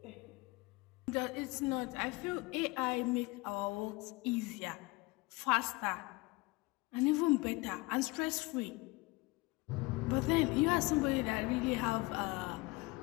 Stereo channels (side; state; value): right; quieter; 23.5 dB